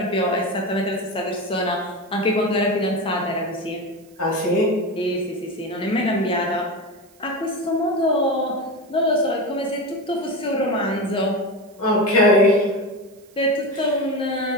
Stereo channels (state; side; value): noise; right; hiss, 30 dB below the sound